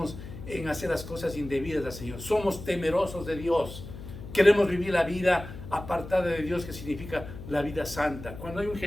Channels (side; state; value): left; noise; hum, 12 dB below the sound